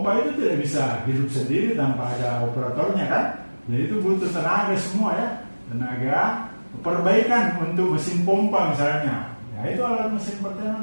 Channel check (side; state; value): both; inverted; correlation -1.00